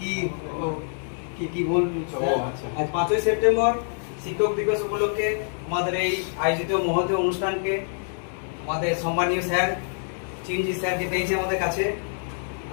কি বলবি? আজ 5ই সেপ্টেম্বর শিক্ষক দিবস উপলক্ষে আমাদের এই আয়োজিত মহৎ অনুষ্ঠানকে আমাদের সম্মানীয় স্যার চিরঞ্জিত স্যারকে পেয়েছি আমাদের কাছে।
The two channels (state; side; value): silent; right; 61 dB below the other